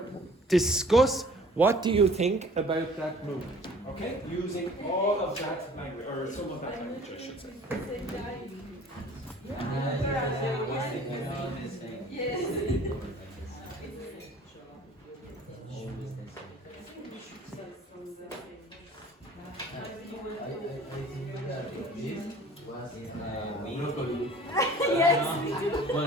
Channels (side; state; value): both; normal; correlation 0.50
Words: Discuss what do you think about that movie. Okay? Using all of that language, or some of that language, I should say.